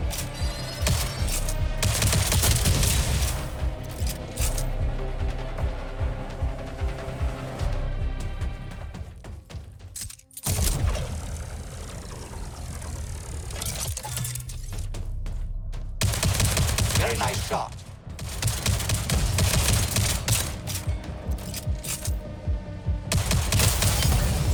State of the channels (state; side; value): identical; both; correlation 1.00